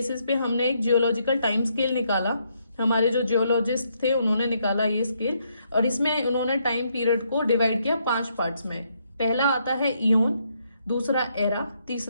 पे हमने एक जियोलॉजिकल टाइम स्केल निकाला। हमारे जो जियोलॉजिस्ट थे उन्होंने निकाला ये स्केल, और इसमें उन्होंने टाइम पीरियड को डिवाइड किया 5 पार्ट्स में। पहला आता है इयोन, दूसरा एरा,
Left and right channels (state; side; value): inverted; both; correlation -0.75